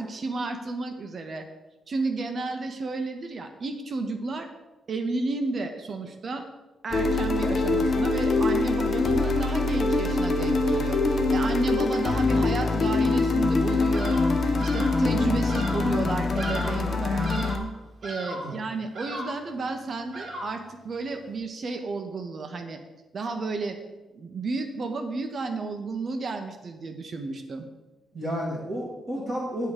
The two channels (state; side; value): normal; both; correlation 0.81